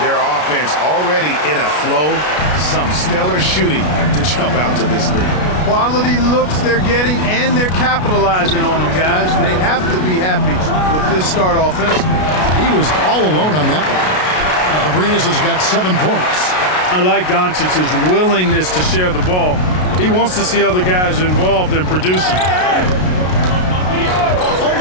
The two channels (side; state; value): right; late; 33 ms